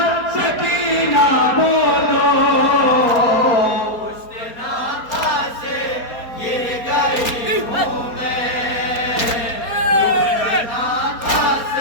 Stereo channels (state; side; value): late; right; 4.3 ms